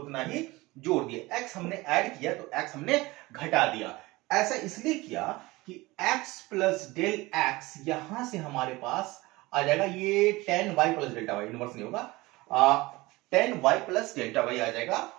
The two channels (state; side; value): quieter; left; 21.2 dB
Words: ही जोड़ दिया। एक्स हमने ऐड किया तो एक्स हमने घटा दिया। ऐसा इसलिए किया कि x प्लस डेल एक्स यहां से हमारे पास आ जाएगा, ये 10y plus delta Y, inverse नहीं होगा, 10y प्लस डेल्टा वाई आ जाएगा,